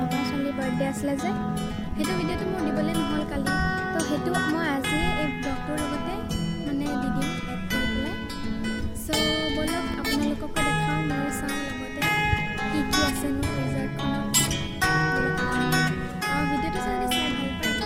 মামাৰ ছোৱালীৰ বাৰ্থডে আছিলে যে, সেইটো ভিডিঅ'টো মোৰ দিবলৈ নহ'ল কালি। তো সেইটো মই আজি এই ব্লগটোৰ লগতে মানে দি দিম এড কৰি পেলাই। চ' ব'লক আপোনালোককো দেখাওঁ, ময়ো চাওঁ লগতে কি কি আছেনো ৰিজৰ্টখনত। আৰু ভিডিঅ'টো যদি চাই ভাল পায়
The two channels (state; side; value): identical; both; correlation 1.00